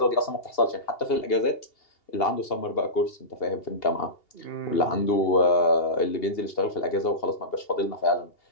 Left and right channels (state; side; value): late; right; 2.8 ms